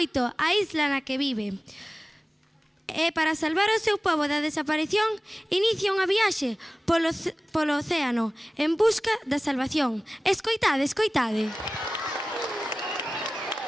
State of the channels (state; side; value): normal; both; correlation 0.97